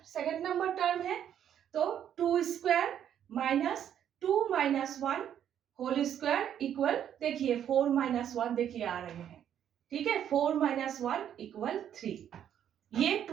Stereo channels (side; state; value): left; quieter; 9.8 dB